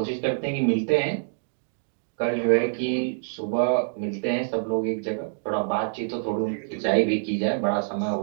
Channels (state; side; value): silent; left; digital silence